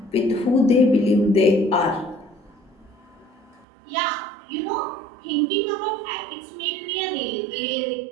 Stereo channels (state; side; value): drops out; left; at 3.7 s